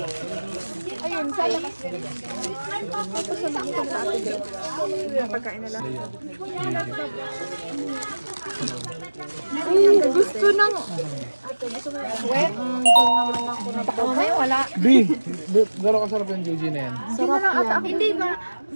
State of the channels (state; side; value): inverted; both; correlation -1.00